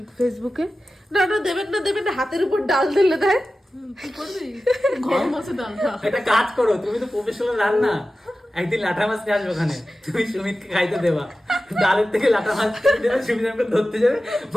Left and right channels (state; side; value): normal; both; correlation 0.94